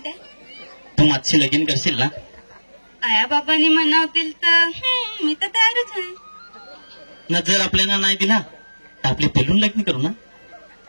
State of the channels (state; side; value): inverted; both; correlation -1.00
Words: तू माझी लगीन करशील ना? आया बाबांनी म्हणावतील तर मी तर तयारच आहे ना। जर आपल्याला नाही दिला तर आपले पेलून लग्न करू ना?